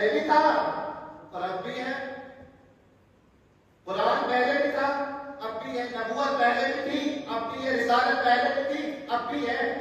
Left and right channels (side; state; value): both; identical; correlation 1.00